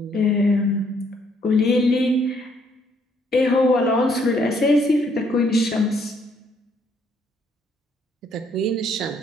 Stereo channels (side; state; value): both; normal; correlation 0.68